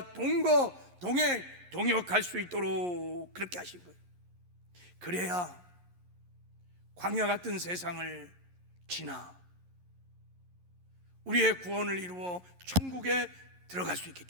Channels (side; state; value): left; late; 11 ms